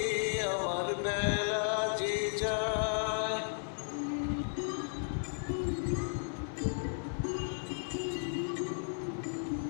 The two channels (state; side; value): silent; right; digital silence